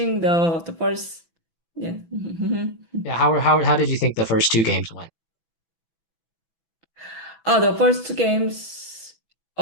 the first. Yeah. yeah. How did you think the first two games went? Oh, the first two games.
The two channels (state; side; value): late; right; 18 ms